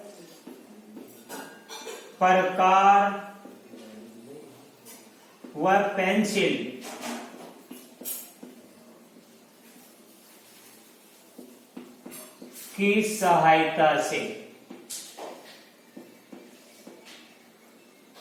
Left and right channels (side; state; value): both; identical; correlation 1.00